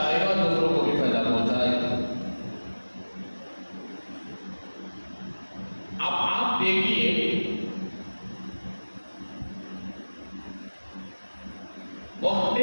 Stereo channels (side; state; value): both; inverted; correlation -1.00